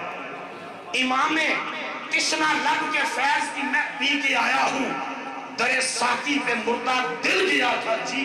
امام تشنا لب کے فیض کی میں پی کے آیا ہوں. در ساقی پہ مردہ دل گیا تھا جی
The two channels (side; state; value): both; identical; correlation 1.00